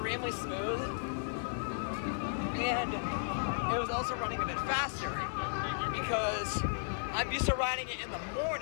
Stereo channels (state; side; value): silent; right; digital silence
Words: smooth, and it was also running a bit faster because I'm used to riding it in the